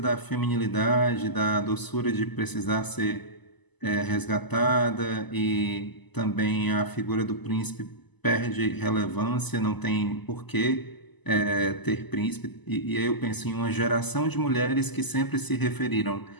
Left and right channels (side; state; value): right; late; 1.0 ms